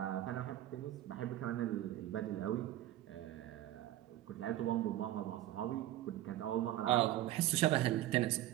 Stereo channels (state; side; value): quieter; left; 14.2 dB